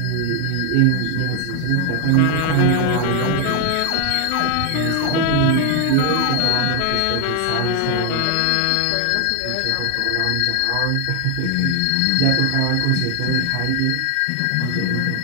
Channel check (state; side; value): different; both; correlation 0.00